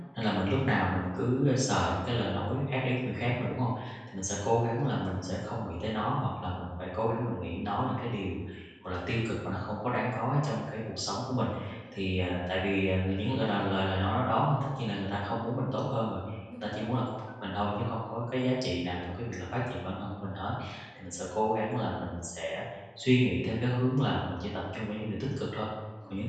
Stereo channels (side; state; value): both; identical; correlation 1.00